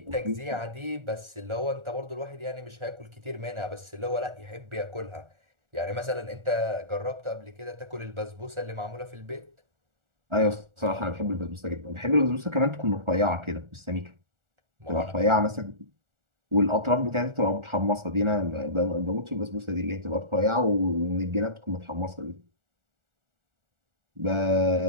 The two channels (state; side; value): late; left; 1.4 ms